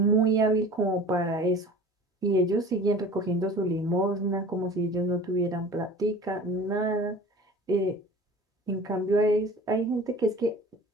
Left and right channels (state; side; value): normal; both; correlation 0.41